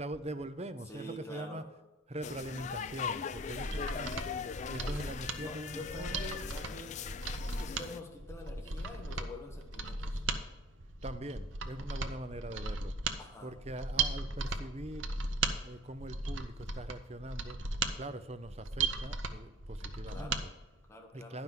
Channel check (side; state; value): both; normal; correlation 0.47